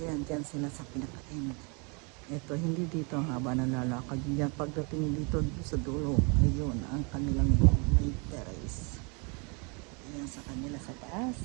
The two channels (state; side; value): quieter; left; 32.9 dB